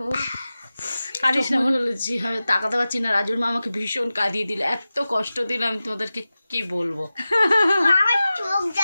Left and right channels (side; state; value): both; inverted; correlation -0.95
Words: কাঁদিস না বলেছি, আমি তাকাতে পারছি না। রাজুর মা আমাকে ভীষণ কাঁদিয়ে দিল, এত কষ্ট দিলাম তোমাদেরকে কি বলবো। আমার চোখ